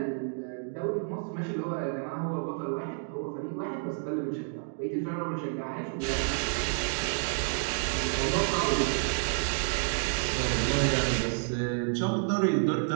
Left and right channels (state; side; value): silent; left; 58 dB below the other